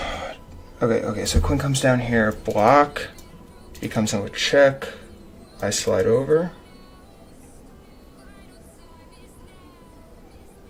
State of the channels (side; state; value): both; identical; correlation 1.00